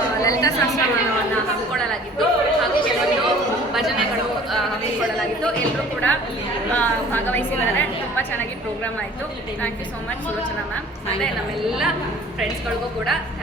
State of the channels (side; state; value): both; normal; correlation 0.49